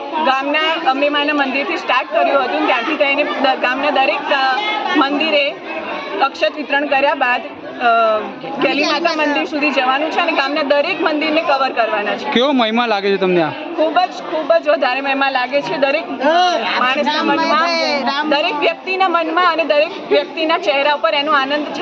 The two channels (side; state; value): both; identical; correlation 1.00